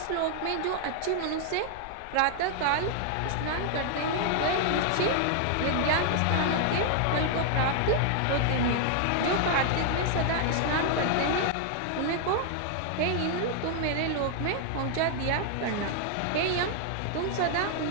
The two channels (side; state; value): both; different; correlation 0.00